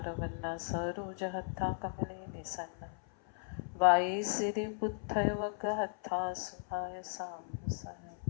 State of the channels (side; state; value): right; silent; 53 dB below the other